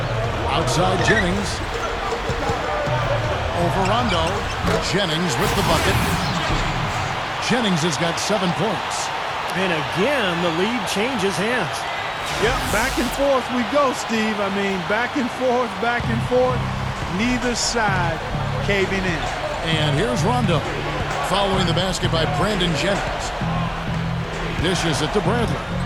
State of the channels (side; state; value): both; identical; correlation 1.00